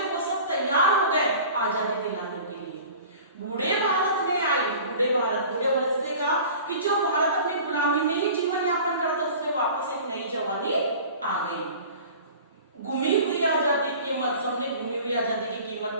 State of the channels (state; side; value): inverted; both; correlation -0.42